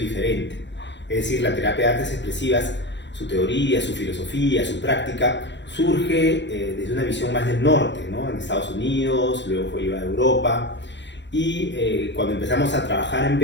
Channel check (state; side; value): late; right; 0.52 ms